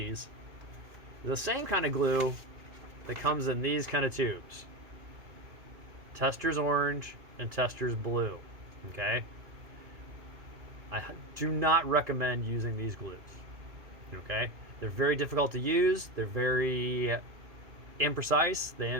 the same kind of glue that comes in these kind of tubes. Testor's orange and Testor's blue. Okay, I do not recommend using these glues. Okay, they're very difficult to use. They're very imprecise. They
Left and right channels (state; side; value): late; left; 2.4 ms